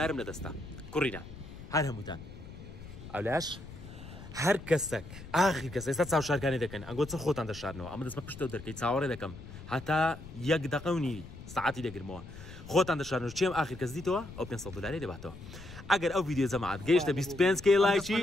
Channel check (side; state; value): left; noise; rumble, 14 dB below the sound